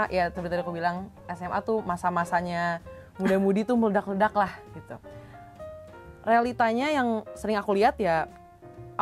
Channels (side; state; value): both; identical; correlation 1.00